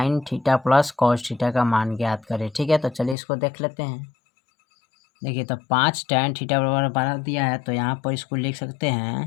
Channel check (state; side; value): drops out; right; at 3.2 s